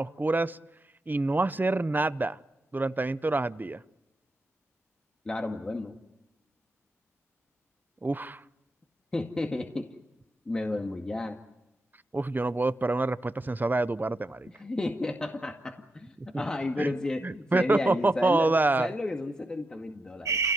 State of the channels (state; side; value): normal; both; correlation 0.85